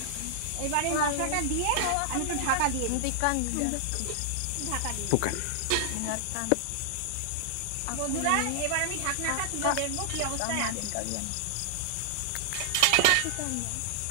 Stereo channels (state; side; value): different; both; correlation -0.01